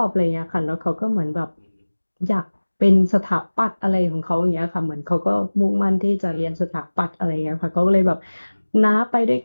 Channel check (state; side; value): inverted; both; correlation -1.00